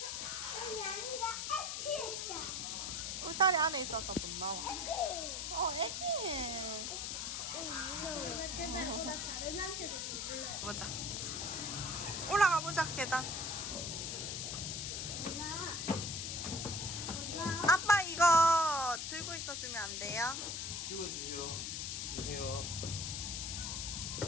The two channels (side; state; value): left; noise; hiss, 3 dB below the sound